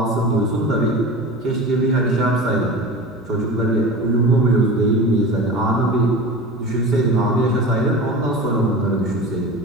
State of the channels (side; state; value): both; normal; correlation 0.32